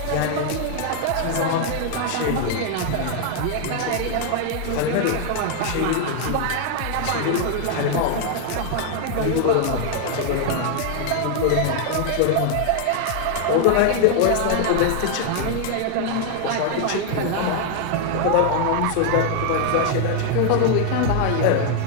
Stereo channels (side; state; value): both; different; correlation 0.00